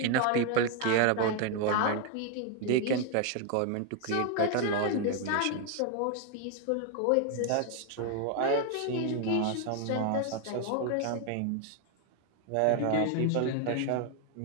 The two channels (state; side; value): different; both; correlation 0.01